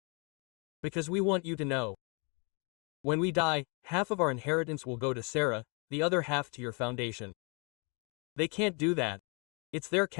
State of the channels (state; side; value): quieter; right; 33.3 dB